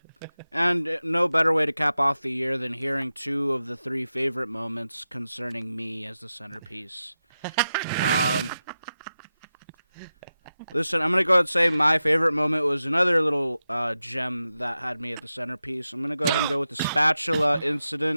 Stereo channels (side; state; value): both; inverted; correlation -0.92